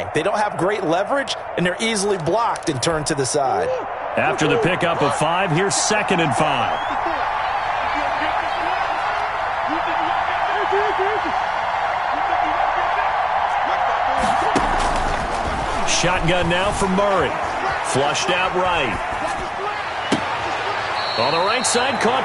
They don't have great leverage, and they're easily blocked and turned to the side. After the pickup of 5, here's 2nd and 5. Shotgun now for Murray. Flushed out right. On the right side,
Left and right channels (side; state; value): both; identical; correlation 1.00